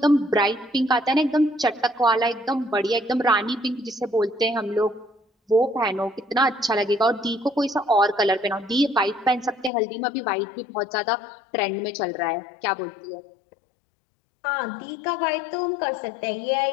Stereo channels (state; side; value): drops out; right; at 9.7 s